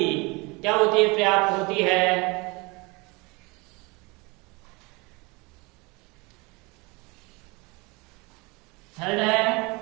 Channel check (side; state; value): left; quieter; 26.6 dB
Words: क्या होती है, पर्याप्त होती है। थर्ड है,